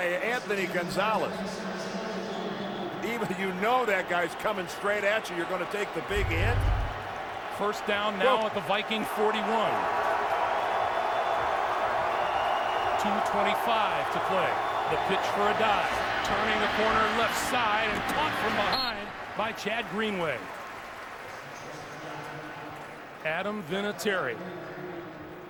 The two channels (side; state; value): both; identical; correlation 1.00